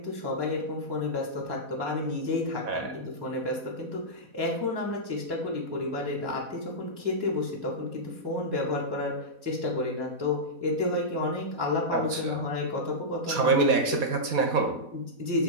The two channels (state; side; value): late; left; 4.2 ms